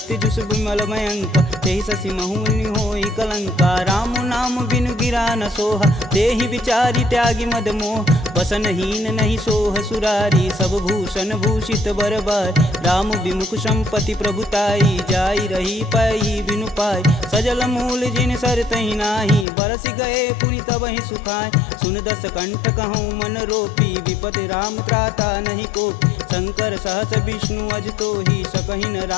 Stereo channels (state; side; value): drops out; right; at 19.5 s